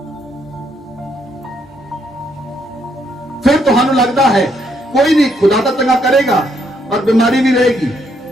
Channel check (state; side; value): normal; both; correlation 0.73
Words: फिर तुहानू लगता है कोई नहीं, खुदा तो चंगा करेगा, और बीमारी भी रहेगी।